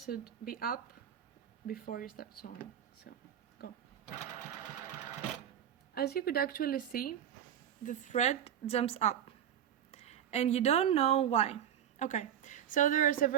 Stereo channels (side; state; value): left; quieter; 9.8 dB